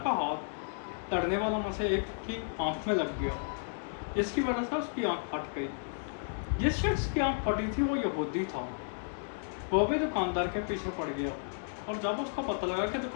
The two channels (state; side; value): silent; right; digital silence